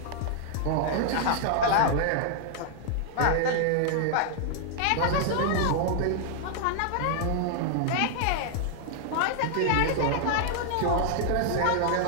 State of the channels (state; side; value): different; both; correlation -0.01